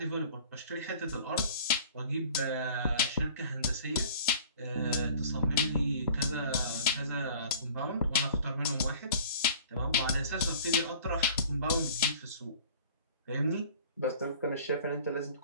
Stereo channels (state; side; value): inverted; both; correlation -0.48